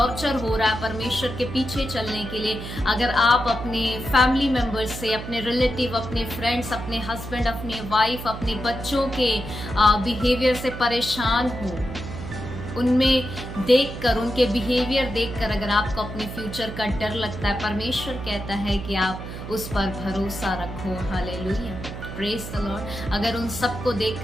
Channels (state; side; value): noise; right; hum, 9 dB below the sound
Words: हो रहा है परमेश्वर के पीछे चलने के लिए, अगर आप अपने फैमिली मेंबर्स से, अपने रिलेटिव, अपने फ्रेंड्स, अपने हस्बैंड, अपने वाइफ, अपने बच्चों के बिहेवियर से परेशान हो, उनमें देखकर, उनके बिहेवियर देखकर अगर आपको अपने फ्यूचर का डर लगता है, परमेश्वर कहता है कि आप उस पर भरोसा रखो। Hallelujah, praise the Lord. अगर उन सबको